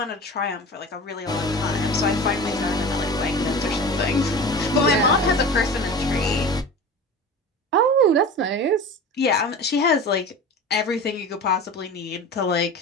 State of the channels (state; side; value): normal; both; correlation 0.34